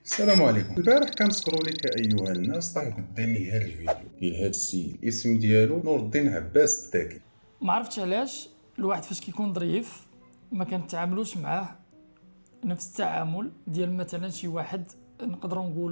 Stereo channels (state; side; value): inverted; both; correlation -1.00